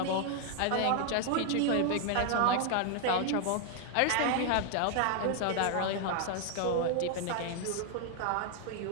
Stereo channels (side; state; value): both; different; correlation 0.00